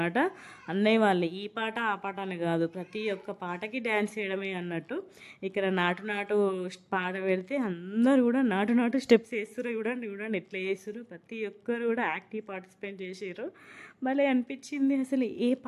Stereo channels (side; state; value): both; identical; correlation 1.00